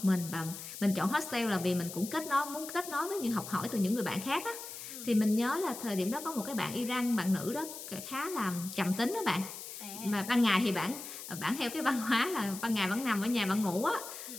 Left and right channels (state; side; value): noise; left; hiss, 10 dB below the sound